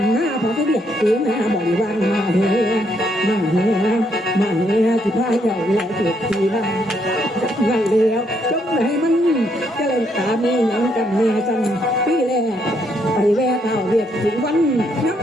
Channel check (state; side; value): normal; both; correlation 0.74